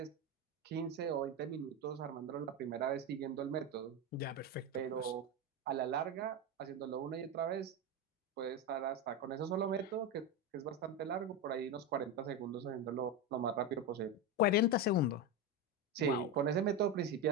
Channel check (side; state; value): both; normal; correlation 0.14